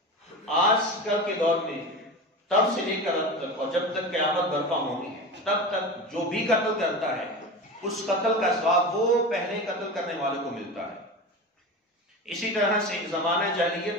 آج کل کے دور میں تب سے لے کر اب تک، اور جب تک قیامت برپا ہونی ہے، تب تک جو بھی قتل کرتا ہے اس قتل کا ثواب وہ پہلے قتل کرنے والے کو ملتا ہے۔ اسی طرح سے زمانہ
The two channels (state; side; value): normal; both; correlation 0.27